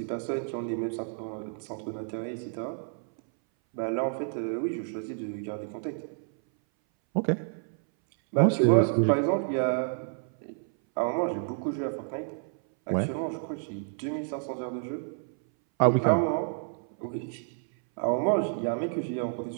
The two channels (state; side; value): silent; left; 58 dB below the other